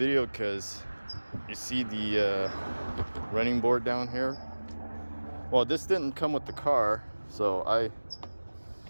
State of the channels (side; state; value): both; inverted; correlation -1.00